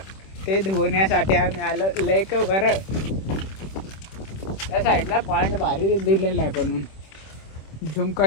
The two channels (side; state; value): right; late; 26 ms